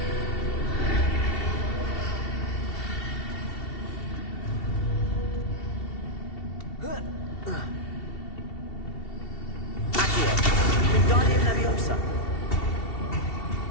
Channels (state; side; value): late; right; 2.7 ms